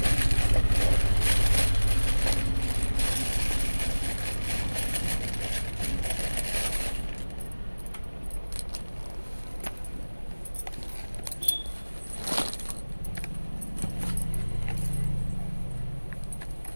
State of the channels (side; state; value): both; inverted; correlation -1.00